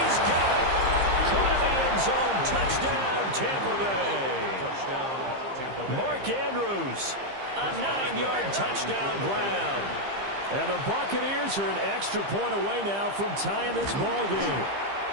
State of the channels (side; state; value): left; late; 15 ms